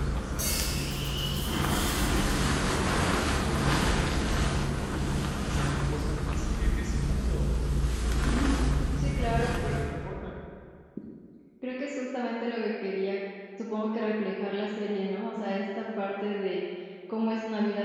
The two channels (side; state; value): both; identical; correlation 1.00